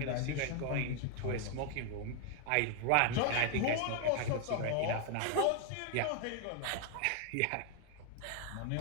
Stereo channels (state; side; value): different; both; correlation 0.00